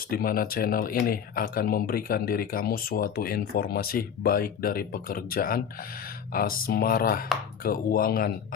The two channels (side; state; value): right; quieter; 7.8 dB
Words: di mana channel ini akan memberikan diri kamu suatu informasi baik dari pekerjaan, asmara, keuangan,